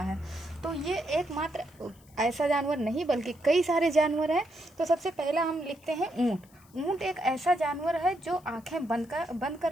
है। तो ये एकमात्र ऐसा जानवर नहीं बल्कि कई सारे जानवर हैं। तो सबसे पहला हम लिखते हैं ऊँट। ऊँट एक ऐसा जानवर है जो आंखें बंद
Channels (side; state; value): left; noise; hiss, 29 dB below the sound